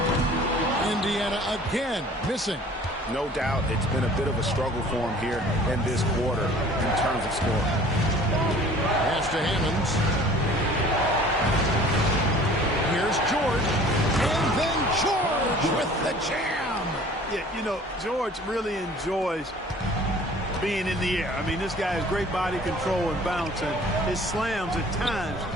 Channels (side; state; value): both; normal; correlation 0.49